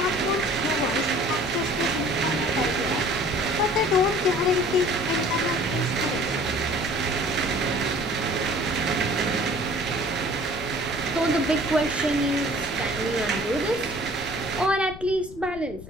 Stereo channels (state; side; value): noise; left; rumble, 15 dB below the sound